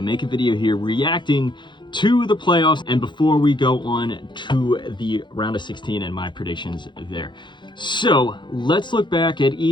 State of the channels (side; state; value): right; late; 0.23 ms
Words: make a video here reacting to the playoffs and before we go on to the round of 16 and my predictions there. So let's look back at